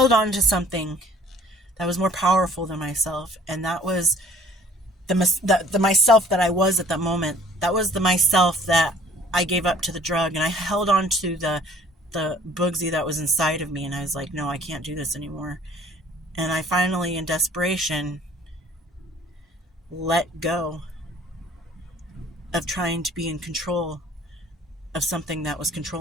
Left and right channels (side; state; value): both; normal; correlation 0.55